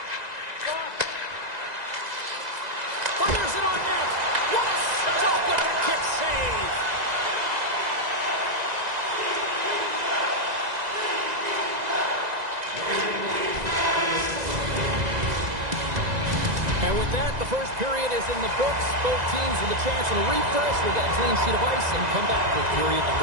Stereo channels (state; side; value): late; left; 2.0 ms